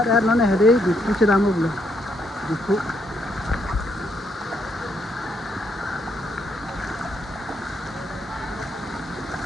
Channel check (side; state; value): both; normal; correlation 0.75